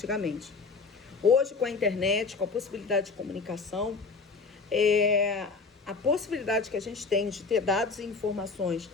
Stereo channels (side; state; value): right; quieter; 4.4 dB